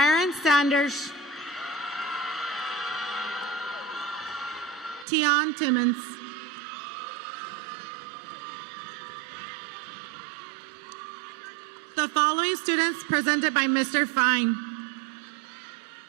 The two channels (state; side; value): drops out; left; at 5.1 s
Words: Sanders. Tion Timmons. The following students presented by Mr. Fine.